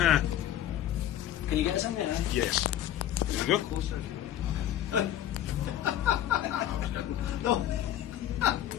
you get us in there? Yes. There we go. Closer. No.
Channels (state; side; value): quieter; right; 11.9 dB